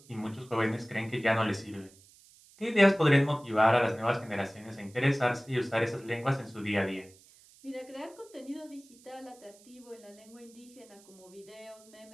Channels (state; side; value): noise; right; hiss, 25 dB below the sound